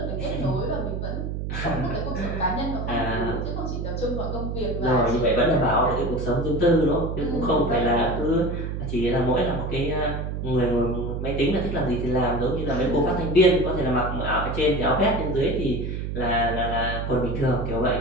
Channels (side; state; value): right; noise; hum, 4 dB below the sound